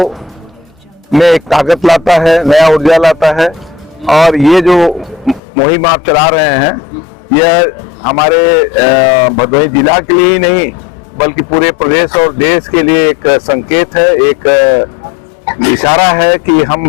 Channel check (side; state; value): right; drops out; at 5.4 s